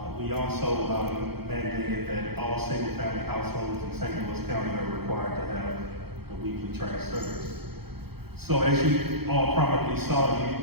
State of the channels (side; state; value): left; late; 0.96 ms